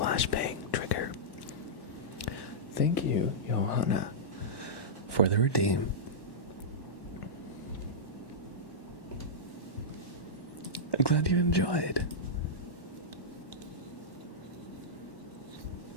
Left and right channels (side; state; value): right; late; 1.1 ms